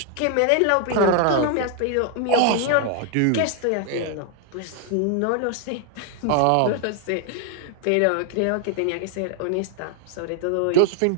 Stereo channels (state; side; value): different; both; correlation 0.00